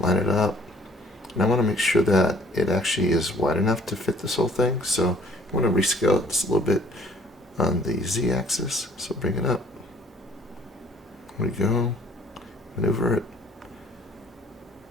it up. And I want to make sure that it actually is wide enough to fit this whole thing. So I want to rescale it just a little bit on the Z axis. So bring it up. There we go. Maneuver it.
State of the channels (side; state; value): both; normal; correlation 0.57